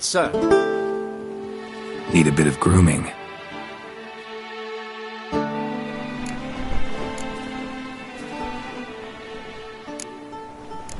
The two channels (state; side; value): identical; both; correlation 1.00